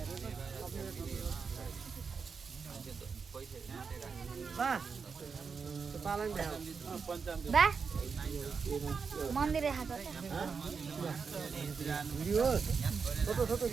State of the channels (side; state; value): left; quieter; 5.5 dB